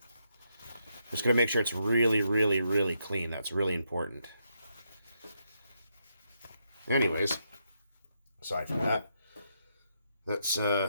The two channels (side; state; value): both; inverted; correlation -0.79